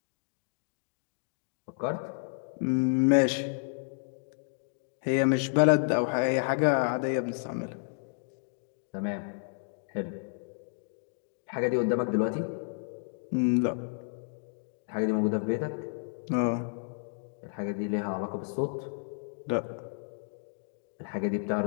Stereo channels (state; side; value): silent; right; digital silence